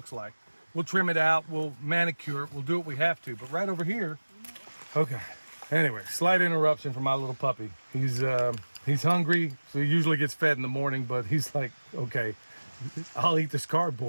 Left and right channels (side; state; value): both; inverted; correlation -1.00